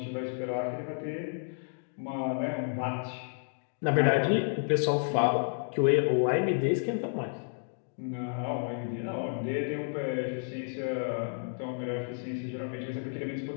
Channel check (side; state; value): right; silent; digital silence